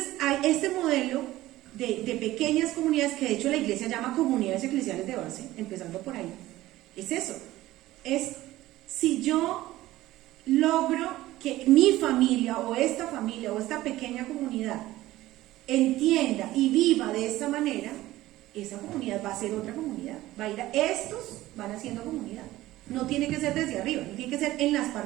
hay este modelo de pequeñas comunidades que de hecho la iglesia llama comunidades eclesiales de base, empezando por ahí. Es eso, es si yo logro que mi familia o esta pequeña comunidad entienda y viva de esta manera, esa comunidad va a ser otra comunidad, va a ir a estos, van haciendo comunidad. No tiene que ser desde arriba, no tiene que ser en las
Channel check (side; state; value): left; quieter; 16.3 dB